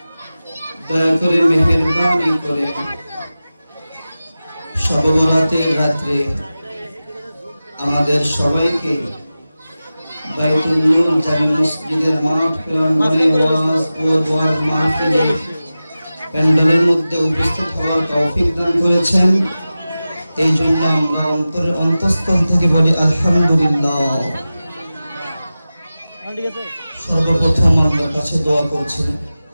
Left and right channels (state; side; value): inverted; both; correlation -0.95